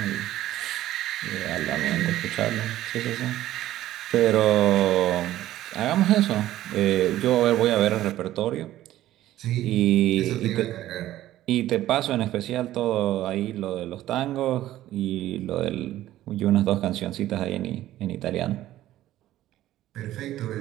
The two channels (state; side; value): quieter; left; 14.1 dB